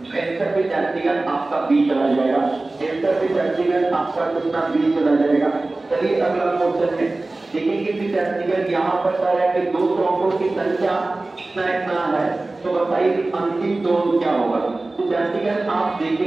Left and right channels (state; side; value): quieter; left; 3.1 dB